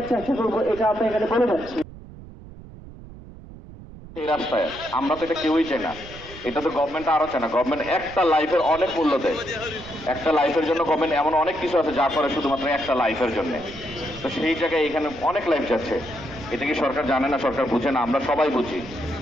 চেষ্টা করবো, এটা আমরা এখানে বলে যাচ্ছি। এই রাস্তায় আমরা তো এটা কেউই চাই না, এটা তো গভর্নমেন্ট আরো চায় না। গভর্নমেন্ট একটা লাইফের অনেক মূল্য দেয়, একটা লাইফের জন্য গভর্নমেন্ট এমন অনেক কিছু আছে যা করে শুধুমাত্র একটা লাইফের জন্য। তো সেই জায়গায় এখানে অনেক লাইফ যাচ্ছে, এটা কি সরকার জানে না, সরকার বুঝে না? আমরা সবাই বুঝি।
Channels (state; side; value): noise; right; rumble, 16 dB below the sound